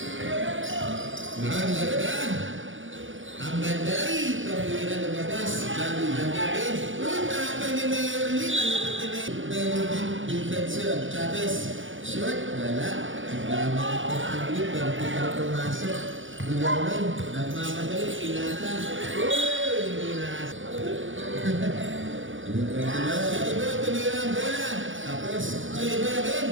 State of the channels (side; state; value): left; late; 0.56 ms